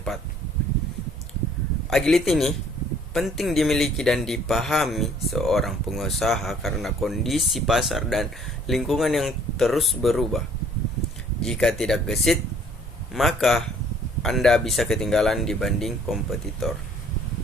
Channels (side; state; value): both; normal; correlation 0.58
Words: Agility ini penting dimiliki dan dipahami seorang pengusaha karena kondisi pasar dan lingkungan yang terus berubah. Jika tidak gesit, maka Anda bisa ketinggalan dibanding kompetitor.